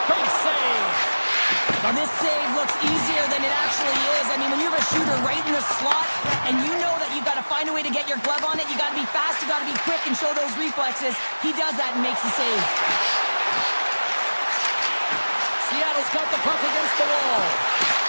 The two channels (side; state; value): both; inverted; correlation -1.00